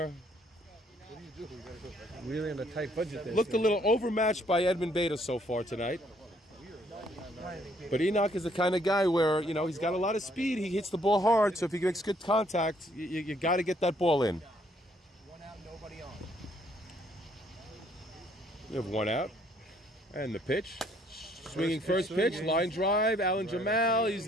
Really on a tight budget there. looked a little overmatched by Edmund Beta so far tonight. But Enoch is the kind of guy where, you know, he's got a lot of speed. He hits the ball hard. So if he makes good contact, you got to get that ball in. 1 out, nobody on. We have 1 out. And the pitch. Swinging first pitch, line drive. Alan Jamal, he's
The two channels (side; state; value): both; normal; correlation 0.66